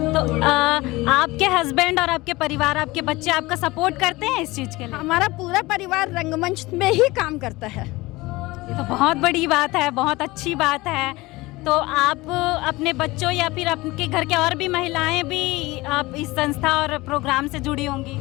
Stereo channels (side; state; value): right; quieter; 20.8 dB